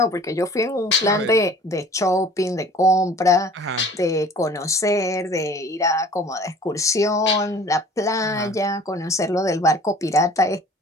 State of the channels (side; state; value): both; normal; correlation 0.48